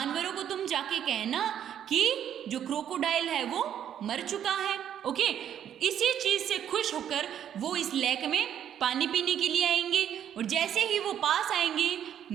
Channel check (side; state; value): left; quieter; 9.8 dB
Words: को तुम जाके कहना कि जो क्रोकोडाइल है वो मर चुका है। ओके, इसी चीज से खुश होकर वो इस लेक में पानी पीने के लिए आएंगे और जैसे ही वो पास आएंगे